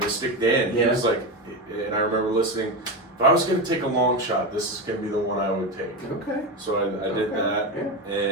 Dan. He was like, and I remember listening, if I was going to take a long shot, this is going to be the one I would take. Okay. So I did that. Yeah.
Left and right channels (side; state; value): both; normal; correlation 0.16